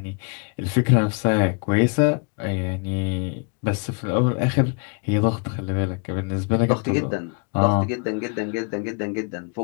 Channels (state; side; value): quieter; right; 36.7 dB